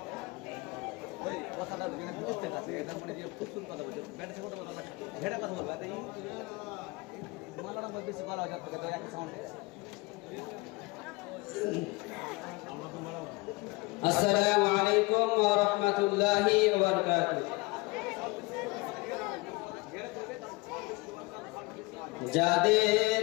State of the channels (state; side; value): quieter; right; 24.5 dB